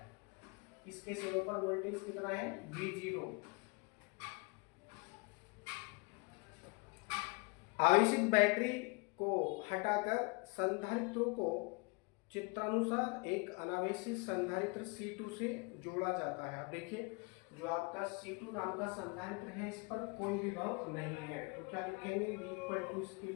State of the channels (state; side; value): quieter; right; 29.8 dB